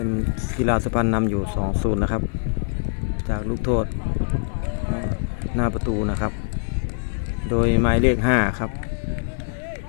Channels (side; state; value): right; silent; digital silence